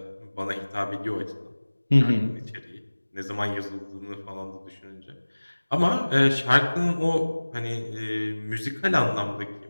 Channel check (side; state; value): both; inverted; correlation -1.00